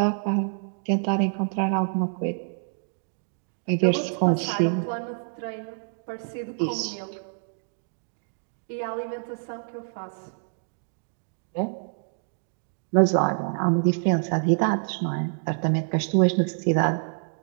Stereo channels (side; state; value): left; silent; digital silence